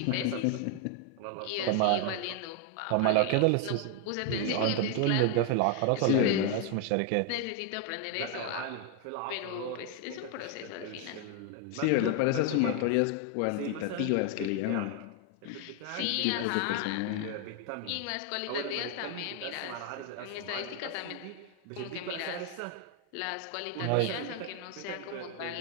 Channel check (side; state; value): both; different; correlation 0.00